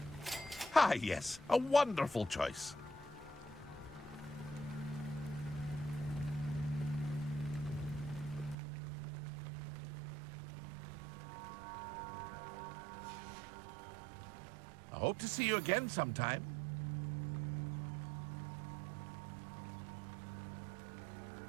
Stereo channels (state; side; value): drops out; left; at 8.6 s